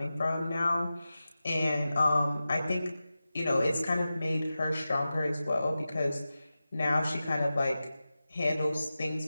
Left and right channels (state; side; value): inverted; both; correlation -0.94